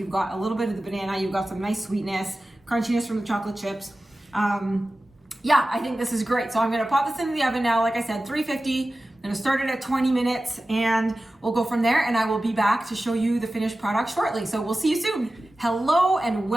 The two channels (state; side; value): normal; both; correlation 0.95